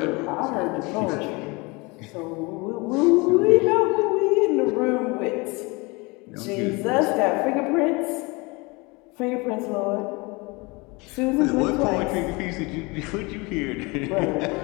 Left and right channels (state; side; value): quieter; right; 26.4 dB